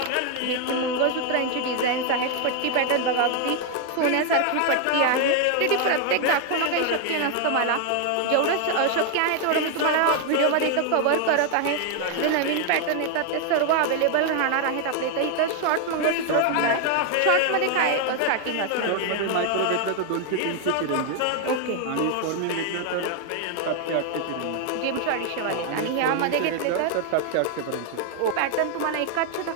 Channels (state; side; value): different; both; correlation 0.00